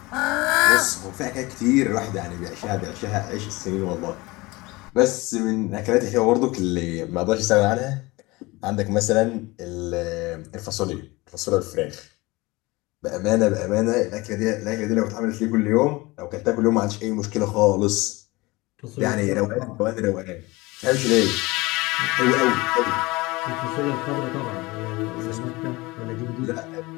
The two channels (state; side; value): quieter; right; 22.5 dB